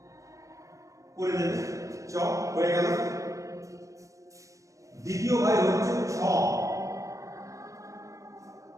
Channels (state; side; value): late; left; 0.16 ms